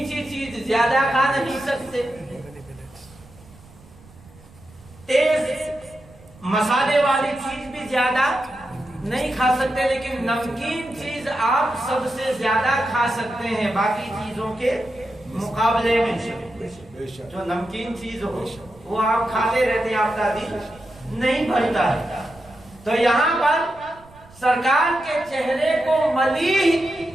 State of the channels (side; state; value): right; noise; rumble, 24 dB below the sound